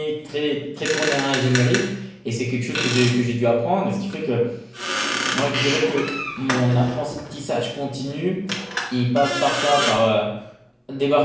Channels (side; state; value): both; identical; correlation 1.00